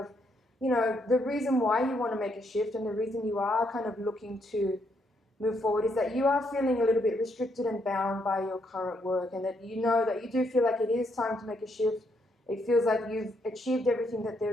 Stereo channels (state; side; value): normal; both; correlation 0.75